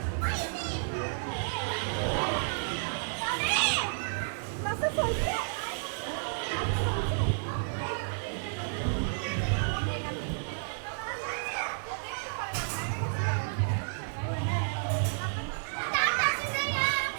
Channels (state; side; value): silent; left; 57 dB below the other